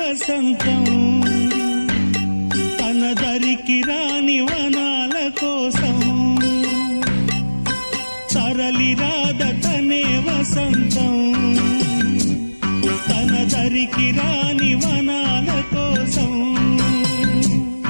తన దరికి రాని వనాల కోసం తరలి రాద తనే వసంతం తన దరికి రాని వనాల కోసం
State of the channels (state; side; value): inverted; both; correlation -1.00